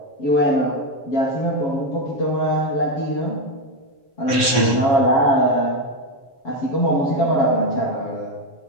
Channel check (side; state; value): right; late; 7.1 ms